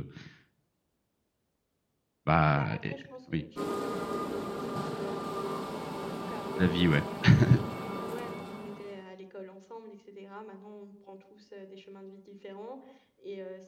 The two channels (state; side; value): identical; both; correlation 1.00